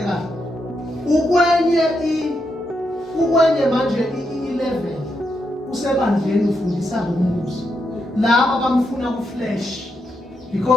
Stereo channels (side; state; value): both; normal; correlation 0.82